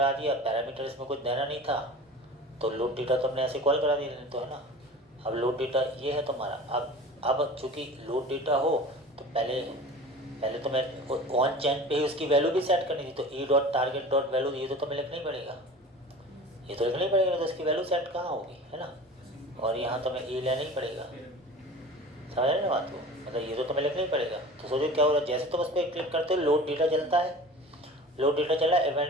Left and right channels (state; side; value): normal; both; correlation 0.38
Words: दिया, पैरामीटर इसमें कुछ देना नहीं था, तो लोड डेटा तुमने ऐसे कॉल करा दिया, तो है ना। अब लोड डेटा ये है तुम्हारा। अब चूँकि लोड डेटा हो तो पहले तुम्हें ऑन चेंज पे ही उसकी वैल्यू भी सेट करनी थी। तो E dot target dot value, ये तो तुम्हें लिखना ही पड़ेगा, ये तो लिखना ही पड़ेगा। तो उसकी वैल्यू सेट कहाँ होगी, है ना। और यहाँ तुम्हें ई लेना ही पड़ेगा, समझ रहे ना बात को। मतलब ये तो तुम्हें लिखना ही पड़ेगा। तो सोचो क्या हो रहा है, जैसे तुम उस पर क्लिक करते हो लोड डेटा चलता है, लोड डेटा चला,